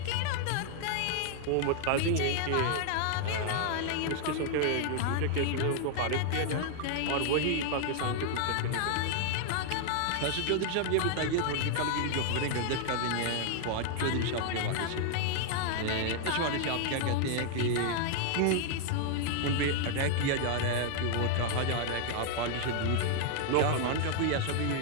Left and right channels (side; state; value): both; different; correlation 0.00